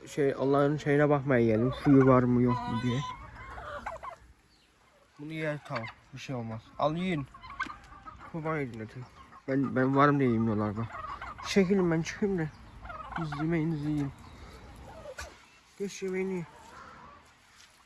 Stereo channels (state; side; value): identical; both; correlation 1.00